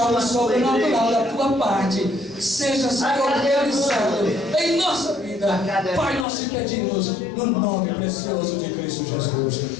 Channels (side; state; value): right; drops out; at 6.2 s